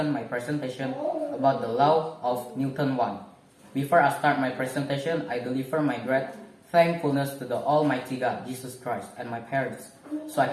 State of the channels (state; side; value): identical; both; correlation 1.00